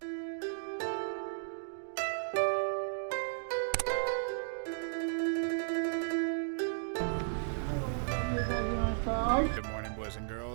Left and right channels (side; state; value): left; silent; digital silence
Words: Good morning, boys and